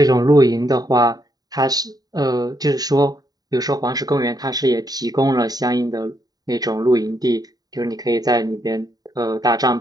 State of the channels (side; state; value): left; late; 0.18 ms